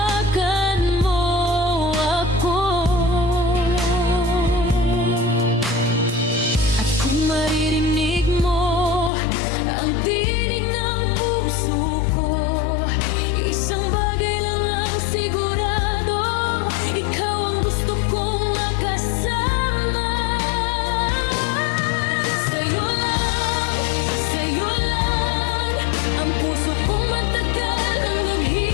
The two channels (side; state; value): right; drops out; at 9.1 s